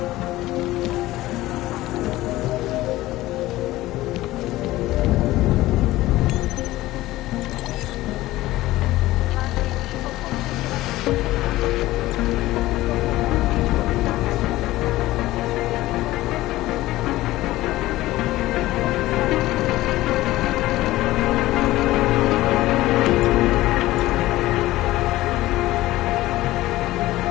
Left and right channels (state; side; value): quieter; right; 17.0 dB